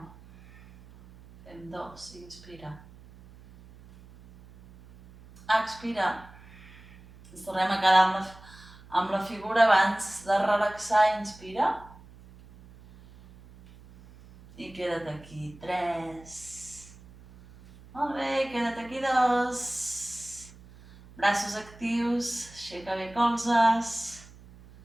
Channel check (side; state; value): right; noise; hum, 21 dB below the sound